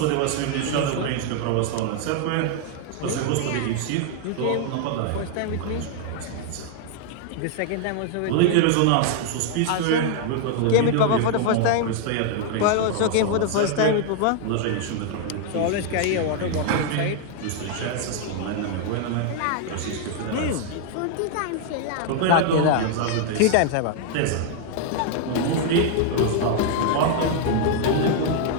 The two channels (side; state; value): both; different; correlation 0.00